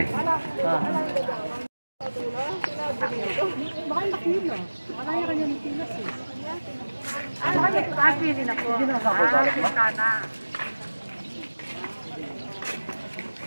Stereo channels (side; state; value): both; inverted; correlation -1.00